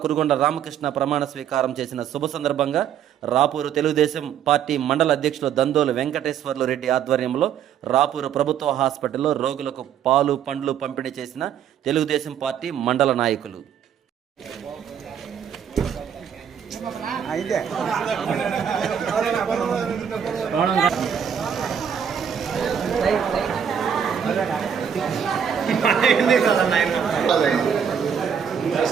కురుగొండ రామకృష్ణ ప్రమాణ స్వీకారం చేసిన శుభ సందర్భంగా రాపూరు తెలుగుదేశం పార్టీ మండల అధ్యక్షులు దందోలు వెంకటేశ్వర్లు రెడ్డి ఆధ్వర్యంలో రాపూరు ప్రభుత్వ హాస్పిటల్లో రోగులకు పాలు పండ్లు పంపిణీ చేసిన తెలుగుదేశం పార్టీ మండల నాయకులు.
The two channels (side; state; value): left; quieter; 8.3 dB